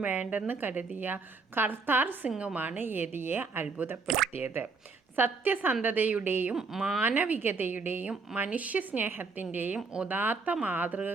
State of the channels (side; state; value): left; quieter; 4.3 dB